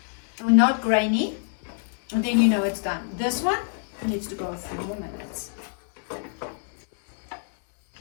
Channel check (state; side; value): silent; right; 61 dB below the other